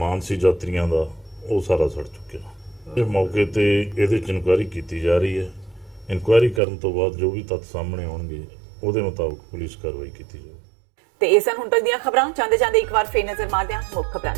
ਸੀ ਯਾਤਰੀਆਂ ਦਾ ਉਹ ਸਾਰਾ ਸੜ ਚੁੱਕਿਆ। ਇਹ ਮੌਕੇ ਤੇ ਇਹਦੇ 'ਚ ਇਨਕੁਆਇਰੀ ਕੀਤੀ ਜਾ ਰਹੀ ਹੈ। ਇਨਕੁਆਇਰੀ ਕਰਨ ਤੋਂ ਬਾਅਦ ਜੋ ਵੀ ਤੱਥ ਸਾਹਮਣੇ ਆਉਣਗੇ ਉਹਦੇ ਮੁਤਾਬਕ ਪੁਲਿਸ ਕਾਰਵਾਈ ਕੀਤੀ ਜਾਵੇਗੀ। ਤੇ ਇਹ ਸਨ ਹੁਣ ਤੱਕ ਦੀਆਂ ਖਬਰਾਂ। ਜਾਂਦੇ ਇੱਕ ਵਾਰ ਫੇਰ ਨਜ਼ਰ ਮਾਰਦੇ ਹਾਂ ਮੁੱਖ ਖਬਰਾਂ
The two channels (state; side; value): drops out; left; at 6.6 s